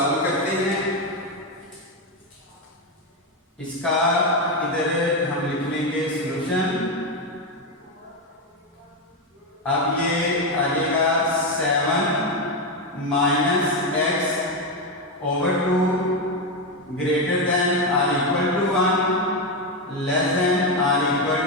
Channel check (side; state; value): both; normal; correlation 0.09